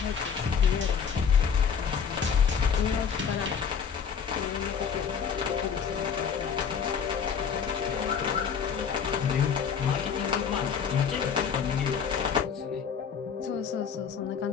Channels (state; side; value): quieter; right; 6.8 dB